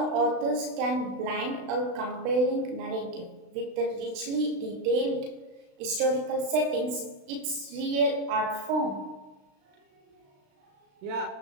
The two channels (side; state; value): left; late; 36 ms